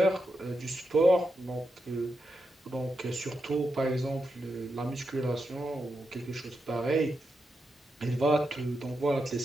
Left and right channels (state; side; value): normal; both; correlation 0.86